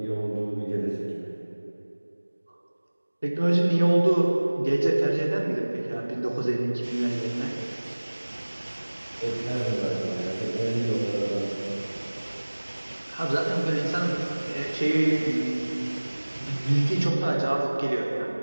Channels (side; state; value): both; inverted; correlation -1.00